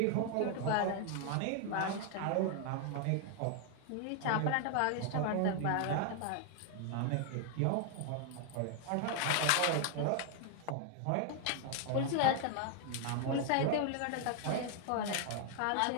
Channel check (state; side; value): different; both; correlation 0.00